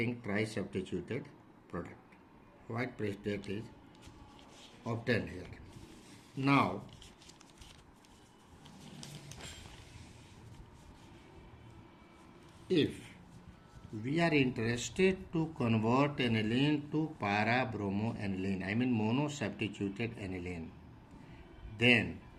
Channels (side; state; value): both; identical; correlation 1.00